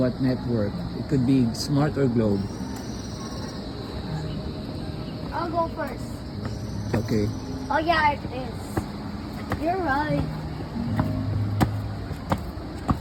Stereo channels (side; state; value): both; identical; correlation 1.00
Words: network. It could be Smart or Globe. I'll go first. Okay. Oh yeah, it is. You're right.